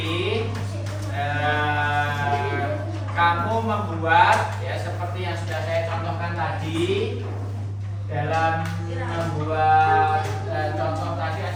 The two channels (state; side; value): identical; both; correlation 1.00